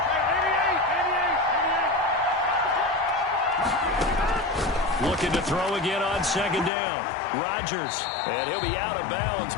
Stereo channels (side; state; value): right; drops out; at 6.7 s